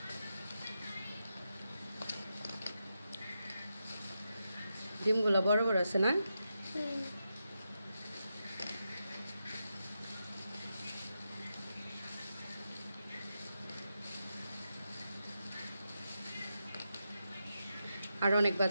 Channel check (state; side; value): inverted; both; correlation -0.86